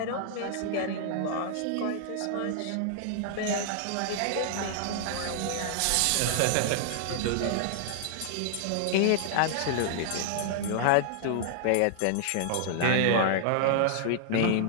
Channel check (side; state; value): both; different; correlation -0.01